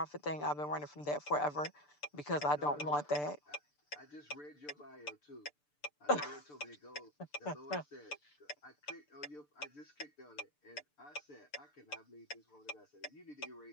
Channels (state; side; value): late; right; 6.8 ms